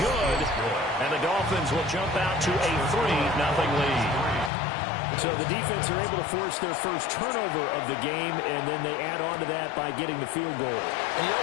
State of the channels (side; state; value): right; drops out; at 4.5 s